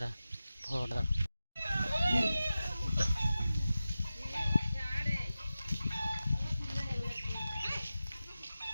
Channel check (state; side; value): inverted; both; correlation -0.94